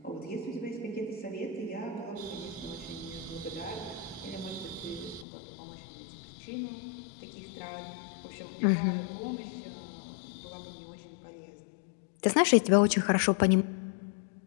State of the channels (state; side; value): drops out; right; at 5.2 s